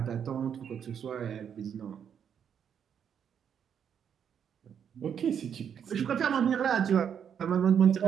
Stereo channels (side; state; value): left; quieter; 8.1 dB